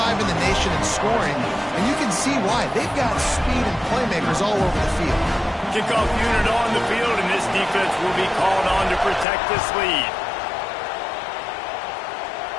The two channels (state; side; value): drops out; right; at 9.2 s